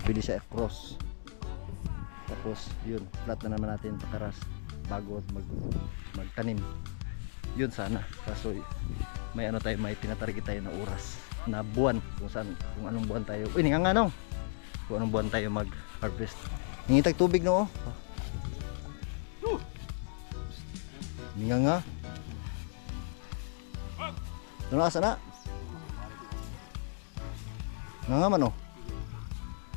pwede siya cross, tapos yun flat na naman natin pakaras bago magtanim. Yun sana, kaso may ano tayo, may tinatarget tayo na oras na buwan, kung anong buwan tayo, uy nga nong kung anong buwan tayo mag harvest. Ningitag tubig no. Nga ano asa na nga man oh.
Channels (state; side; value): silent; right; digital silence